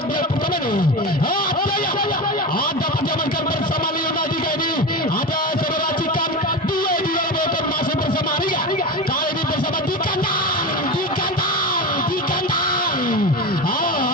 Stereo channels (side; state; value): both; normal; correlation 0.23